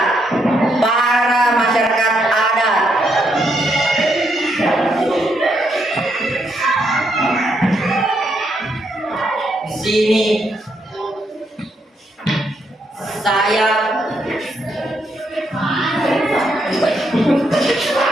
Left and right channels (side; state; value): both; normal; correlation 0.77